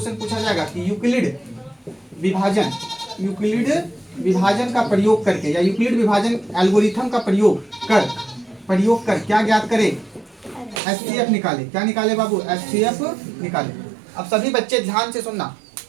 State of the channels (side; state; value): left; drops out; at 10.8 s